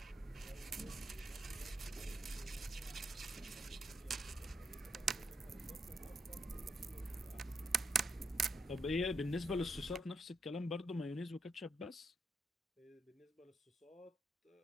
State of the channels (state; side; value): normal; both; correlation 0.80